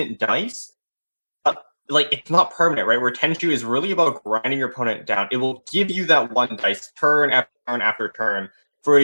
dice. It's not permanent, right? Where Tenshu is really about grinding your opponent down. It will give you that one dice turn after turn after turn for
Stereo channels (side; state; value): both; inverted; correlation -1.00